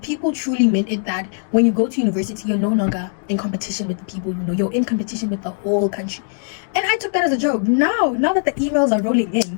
people truly meant it that when you go to university, you're no longer in competition with the people you know. You're in competition with the whole country. And I took that as a joke. Now that the emails are rolling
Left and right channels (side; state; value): right; silent; digital silence